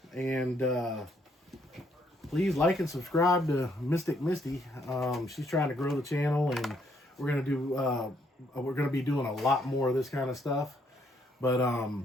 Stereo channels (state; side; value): normal; both; correlation 0.70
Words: and please like and subscribe to Mystic Misty. She's trying to grow the channel, and we're gonna be doing a lot more of this kind of stuff. But